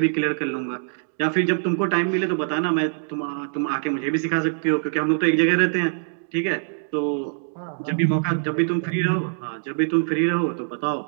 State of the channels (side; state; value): left; silent; digital silence